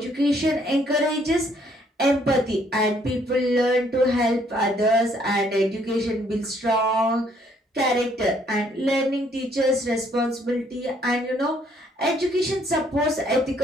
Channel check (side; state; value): both; normal; correlation 0.66